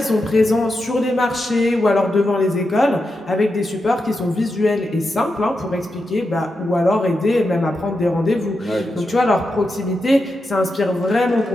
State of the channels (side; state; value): both; normal; correlation 0.88